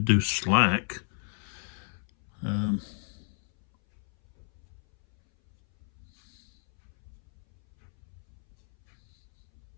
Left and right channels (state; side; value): silent; right; 58 dB below the other